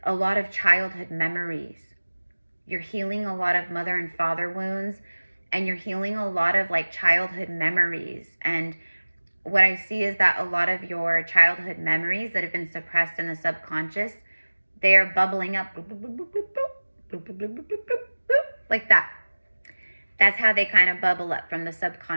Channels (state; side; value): inverted; both; correlation -1.00